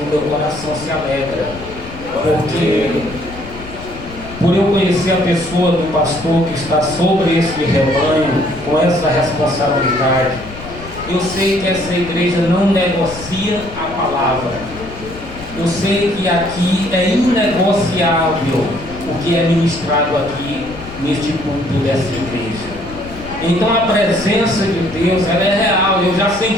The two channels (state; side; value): noise; left; rumble, 14 dB below the sound